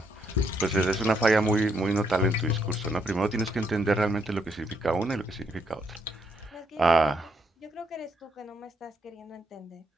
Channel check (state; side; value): normal; both; correlation 0.75